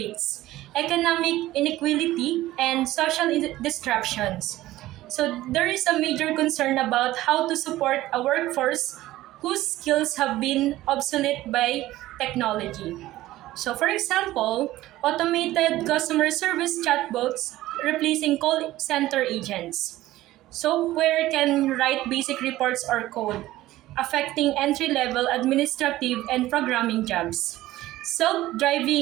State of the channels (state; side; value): quieter; left; 16.0 dB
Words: economic inequality, and social disruptions. So there is a major concern about how to support a workforce whose skills have been obsolete by technology. So for example, automated customer service chatbots replacing call center agents. Software can write basic reports or code, affecting entry level administrative and programming jobs. Self